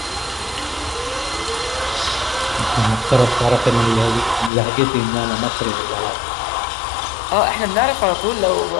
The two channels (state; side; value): drops out; right; at 4.5 s